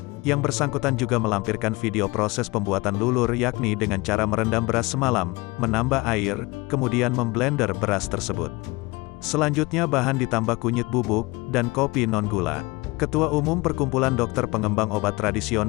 yang bersangkutan juga melampirkan video proses pembuatan lulur yakni dengan cara merendam beras semalam, menambah air, kemudian memblender beras tersebut. Selanjutnya bahan ditambah kunyit bubuk, dan kopi non-gula. Ketua Umum Perkumpulan Dokter Pengembang Obat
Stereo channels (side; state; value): right; quieter; 23.5 dB